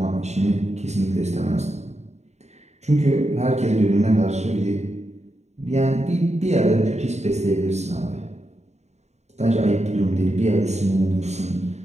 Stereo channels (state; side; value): late; left; 0.32 ms